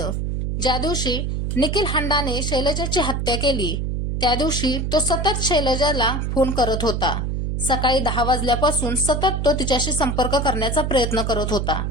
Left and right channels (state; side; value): noise; right; hum, 1 dB below the sound